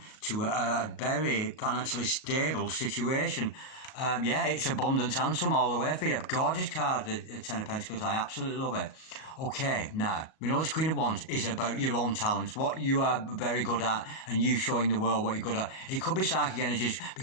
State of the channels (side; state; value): right; late; 38 ms